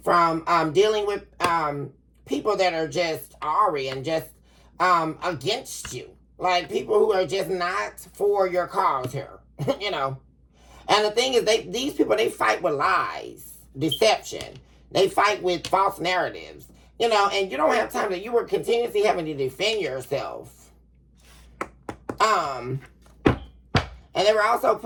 from dealing with people that are just awry and just against you. Like people who are just not for your cause here, you know. And the thing is, these people, they fight with lies, deception. They fight with false narratives, you know, and you don't have time to, you were continuously having to defend yourself. And they were also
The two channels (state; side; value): identical; both; correlation 1.00